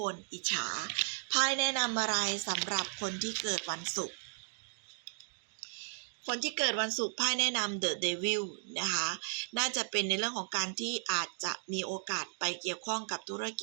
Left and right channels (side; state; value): left; silent; digital silence